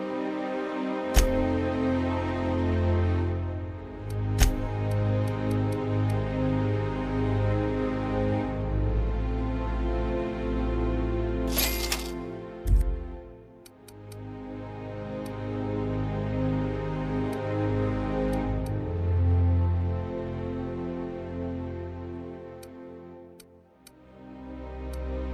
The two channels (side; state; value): both; identical; correlation 1.00